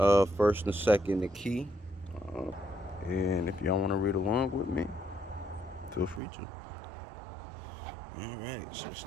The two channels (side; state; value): left; drops out; at 6.2 s